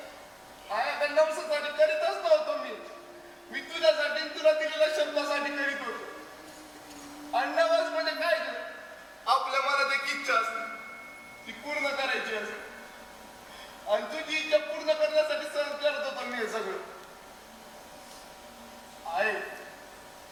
आया नवसासाठी करीतच नव्हतो मी तुझ्यासाठी तुला दिलेल्या शब्दासाठी करीत होतो. आणि नवस म्हणजे काय कर आपल्या मनात एक इच्छा असते ती पूर्ण करायची असते. आणि तुझी इच्छा पूर्ण करण्यासाठी सहन करत होतो मी हे सगळं. आहे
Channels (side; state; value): both; identical; correlation 1.00